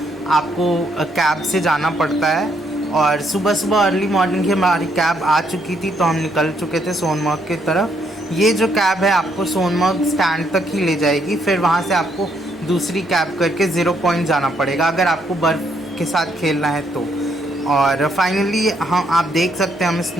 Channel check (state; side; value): normal; both; correlation 0.73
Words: आपको कैब से जाना पड़ता है। और सुबह सुबह अर्ली मॉर्निंग ही हमारी कैब आ चुकी थी, तो हम निकल चुके थे सोनमर्ग की तरफ। ये जो कैब है आपको सोनमर्ग स्टैंड तक ही ले जाएगी, फिर वहाँ से आपको दूसरी कैब करके ज़ीरो पॉइंट जाना पड़ेगा अगर आपको बर्फ़ के साथ खेलना है तो। और फाइनली हम आप देख सकते हैं, हमें